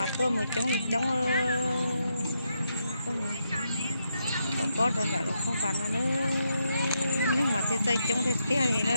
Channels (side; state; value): both; inverted; correlation -0.81